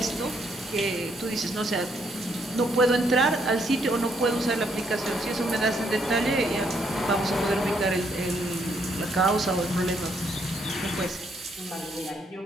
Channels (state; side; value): normal; both; correlation 0.72